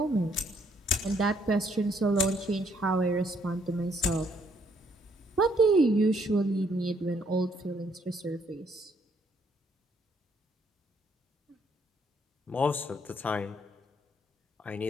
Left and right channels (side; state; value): both; normal; correlation 0.68